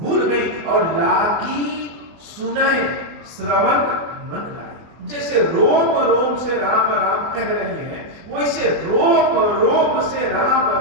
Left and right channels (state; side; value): late; left; 24 ms